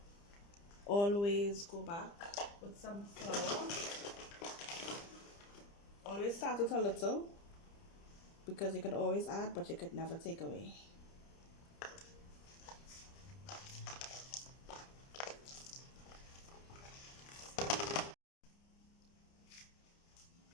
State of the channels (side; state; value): right; late; 30 ms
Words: always go back with some flour. Always start with a little, because you could always add, but you could never take away.